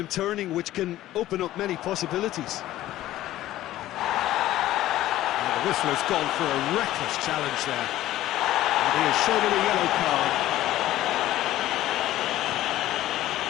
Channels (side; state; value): right; quieter; 14.5 dB